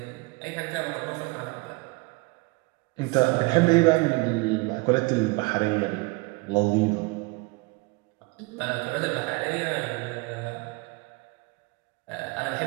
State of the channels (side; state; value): left; quieter; 25.7 dB